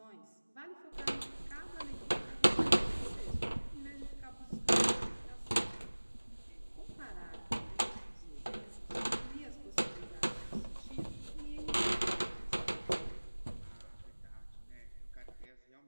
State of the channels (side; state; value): both; inverted; correlation -1.00